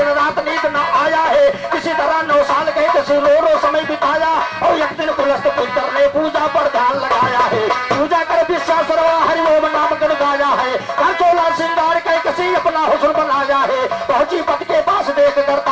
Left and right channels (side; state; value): both; identical; correlation 1.00